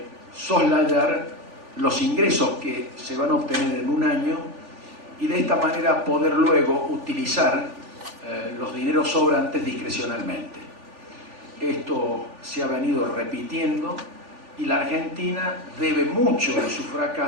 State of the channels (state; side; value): late; left; 3.4 ms